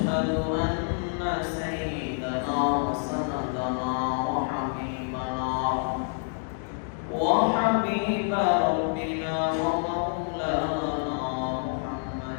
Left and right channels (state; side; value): silent; right; 60 dB below the other